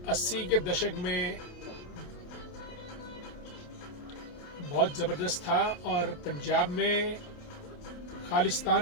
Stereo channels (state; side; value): late; right; 28 ms